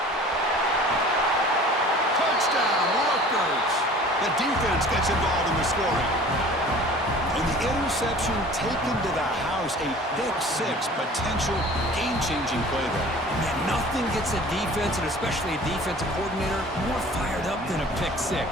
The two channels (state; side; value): normal; both; correlation 0.45